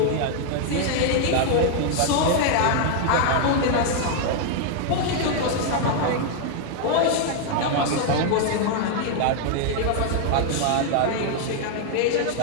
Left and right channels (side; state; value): both; different; correlation 0.00